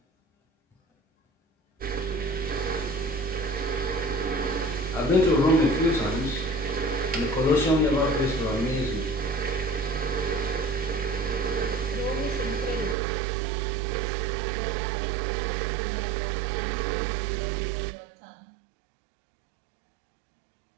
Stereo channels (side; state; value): left; drops out; at 13.0 s